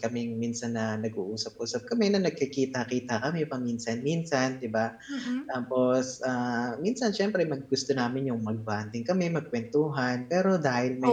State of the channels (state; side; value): identical; both; correlation 1.00